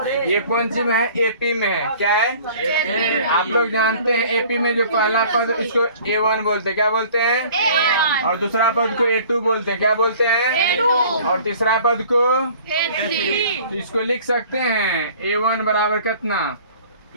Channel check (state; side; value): inverted; both; correlation -0.50